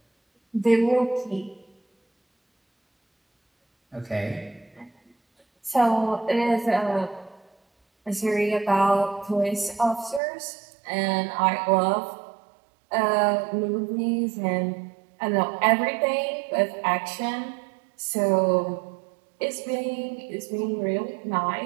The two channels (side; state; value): left; drops out; at 10.2 s